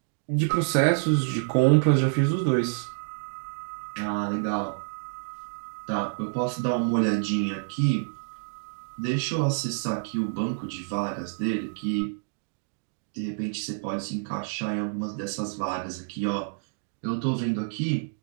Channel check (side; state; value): left; silent; digital silence